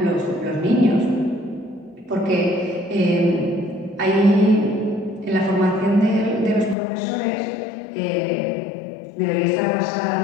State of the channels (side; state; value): right; drops out; at 6.8 s